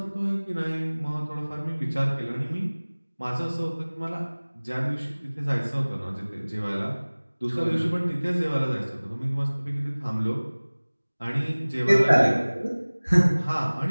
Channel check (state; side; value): inverted; both; correlation -1.00